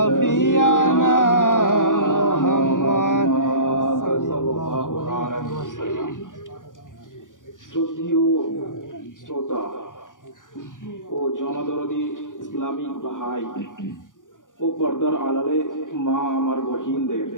मोहम्मद सल्लल्लाहु अलैहि वसल्लम। শ্রদ্ধেয় শ্রোতা ও জনদরদি ইসলামিক ভাই ও পর্দার আড়ালে মা আমার বহিনদের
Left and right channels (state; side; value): late; right; 0.88 ms